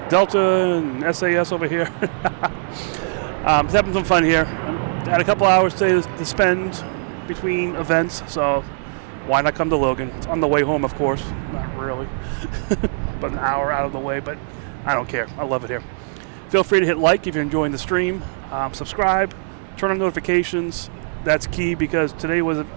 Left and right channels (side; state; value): left; silent; digital silence